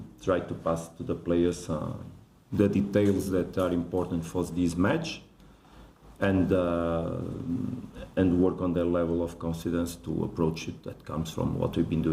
try to pass to the players the details that are important for this match, and work on their level of confidence to approach it. That comes from what we've been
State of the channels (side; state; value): both; identical; correlation 1.00